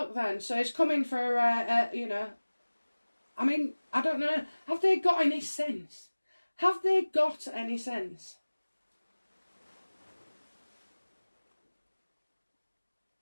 then. So it's coming for, you know, I mean, I don't know. Have they got any sense? Have they got any sense?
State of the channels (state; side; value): inverted; both; correlation -1.00